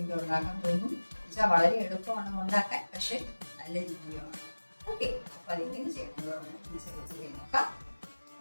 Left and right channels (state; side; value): inverted; both; correlation -1.00